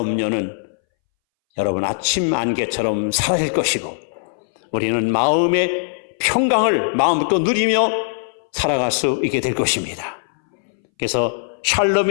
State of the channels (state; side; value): silent; right; 63 dB below the other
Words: 여러분 아침 안개처럼 사라질 것이고 우리는 마음의 평강을 마음부터 누리며 살아갈 수 있게 될 것입니다. 그래서